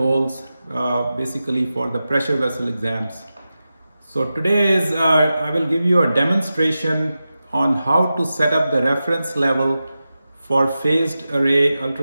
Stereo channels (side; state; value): both; inverted; correlation -0.93